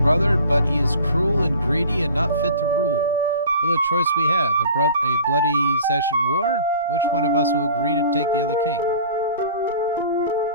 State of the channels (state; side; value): inverted; both; correlation -0.44